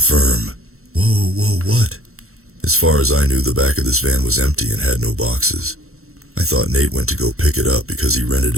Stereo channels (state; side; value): late; left; 0.63 ms